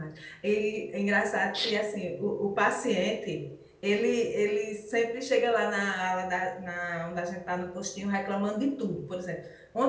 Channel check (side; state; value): both; identical; correlation 1.00